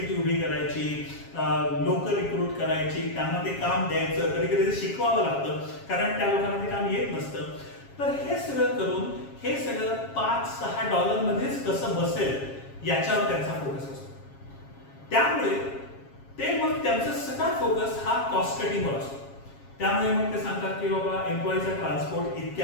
उभी करायची, लोक रिक्रूट करायची, त्यांना ते काम द्यायचं, कधी कधी शिकवावं लागतं कारण त्या लोकांना ते काम येत नसतं. तर हे सगळं करून हे सगळं $5-6 मध्येच कसं बसेल याच्यावर त्यांचा फोकस असतो. त्यामुळे ते मग त्यांचा सगळा फोकस हा कॉस्ट कटिंगवर असतो. त्यामुळे मग ते सांगतात की बाबा एम्प्लॉईचा ट्रान्सपोर्ट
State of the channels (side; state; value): right; late; 7.3 ms